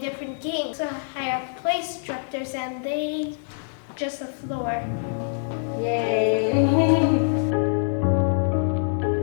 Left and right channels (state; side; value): silent; right; digital silence